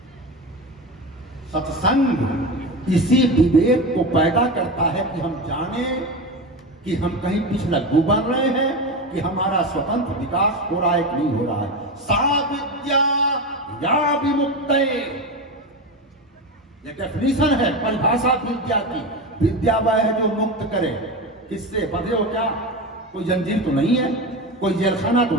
सत्संग इसी विवेक को पैदा करता है कि हम जाने कि हम कहीं पिछलग्गू बन रहे हैं कि हमारा स्वतंत्र विकास हो रहा है कि नहीं हो रहा है। सा विद्या या विमुक्ते, ये डेफिनेशन है, परिभाषा विद्या की। विद्या वह है जो मुक्त करे। किससे? बंधे हो क्या? कोई जंजीर तो नहीं है, कोई जेलखाना तो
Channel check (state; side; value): normal; both; correlation 0.22